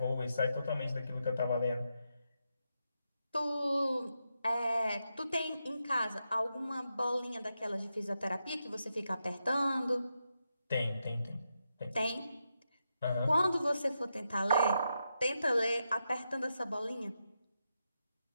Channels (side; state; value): both; inverted; correlation -0.86